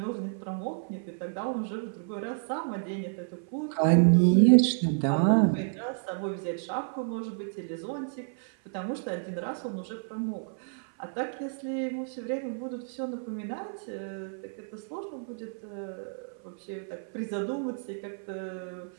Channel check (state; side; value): silent; left; 55 dB below the other